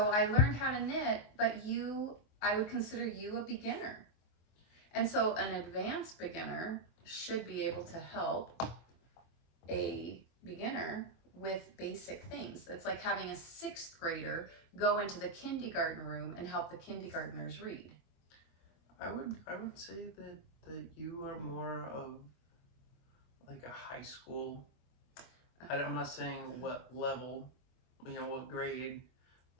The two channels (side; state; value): right; late; 24 ms